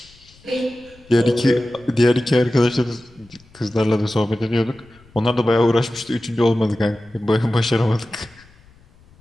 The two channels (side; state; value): left; noise; rumble, 28 dB below the sound